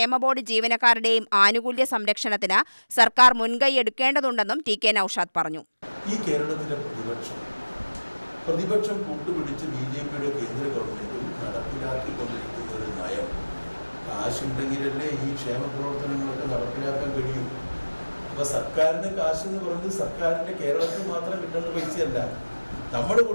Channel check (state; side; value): inverted; both; correlation -1.00